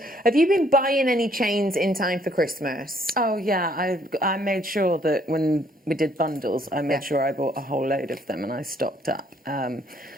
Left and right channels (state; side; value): normal; both; correlation 0.66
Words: Have you been buying any chains in time for Christmas? Oh yeah, I made sure that when we did bundles, I made sure I bought a whole load of them and I stocked up.